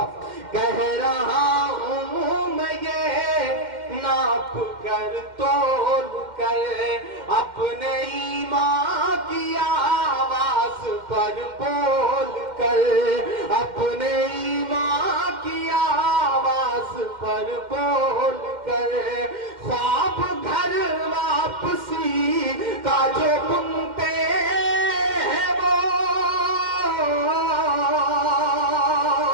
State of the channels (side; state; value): left; late; 2.1 ms